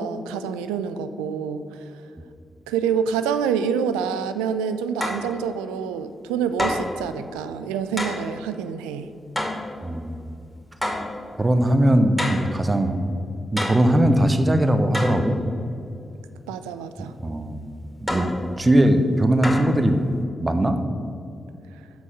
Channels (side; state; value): both; normal; correlation 0.83